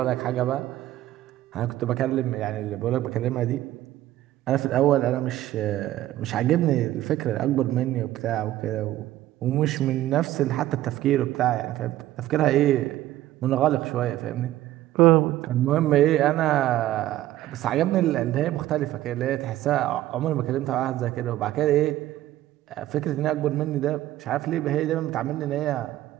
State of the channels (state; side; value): quieter; left; 14.5 dB